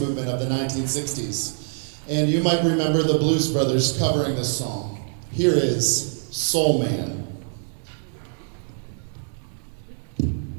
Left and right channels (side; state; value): left; silent; digital silence